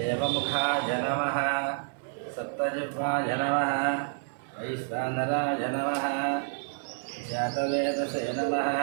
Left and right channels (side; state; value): left; silent; 58 dB below the other